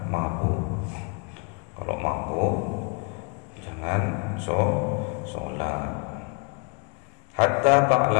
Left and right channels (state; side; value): quieter; right; 33.8 dB